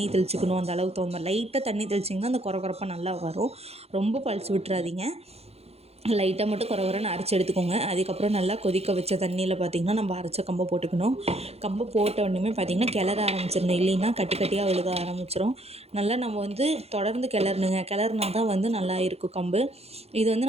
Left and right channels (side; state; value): left; late; 0.30 ms